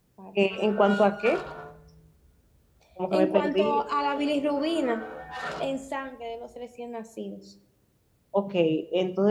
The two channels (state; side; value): identical; both; correlation 1.00